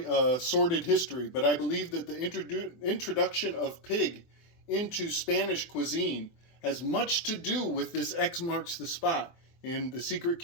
a sordid history, but I believe that the introduction of pig into Spanish cuisine has much to do with this X marks the spot in the secret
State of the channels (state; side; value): late; right; 24 ms